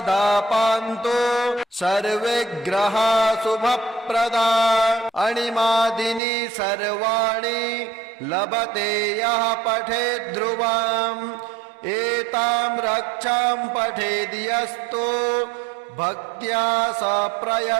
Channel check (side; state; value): left; drops out; at 6.2 s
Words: पान्तु सर्वे ग्रहा शुभप्रदा अणिमादिनी सर्वाणि लभते यः पठेत् ध्रुवम् एतां रक्षां पठेद्यस्तु भक्त्या स